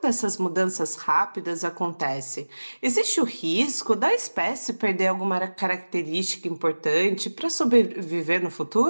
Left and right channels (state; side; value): inverted; both; correlation -1.00